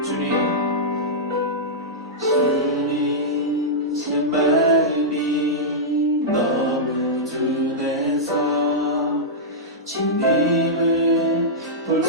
주님, 제 마음이 너무 둔해서 주님을 볼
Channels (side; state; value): both; normal; correlation -0.11